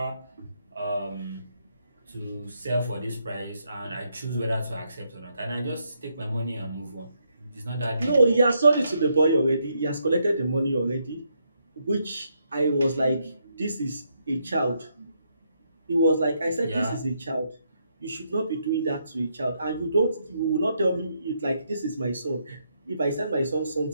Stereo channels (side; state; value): both; inverted; correlation -0.77